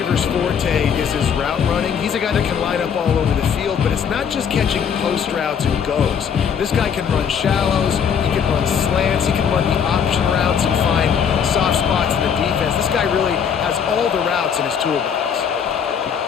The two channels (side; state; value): right; quieter; 7.5 dB